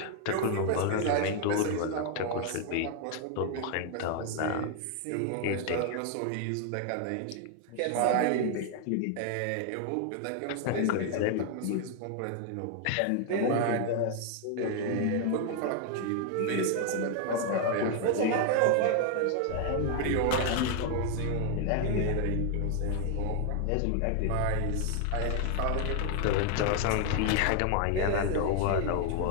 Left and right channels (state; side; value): different; both; correlation 0.00